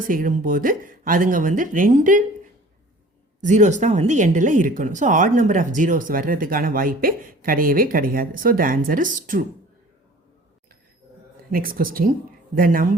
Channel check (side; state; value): both; normal; correlation 0.47